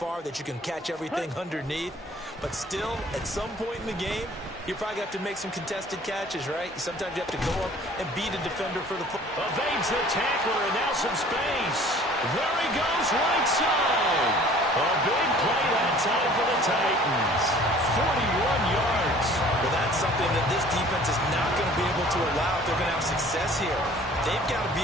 that you can catch everything underneath. But still, at some point in the game, you probably have to make some contested catches, right? Sometimes you have to go up and beat a defender for the football. Evades the tackler, and now some space. There he goes, right side. A big play that time for the Titans. 41 yards. Well, that's something that this defense is not going to be able to allow if they're going to have success here. They've got to be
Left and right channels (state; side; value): normal; both; correlation 0.51